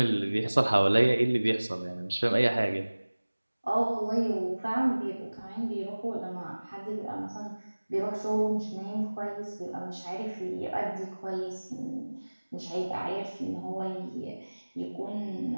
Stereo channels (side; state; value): both; inverted; correlation -1.00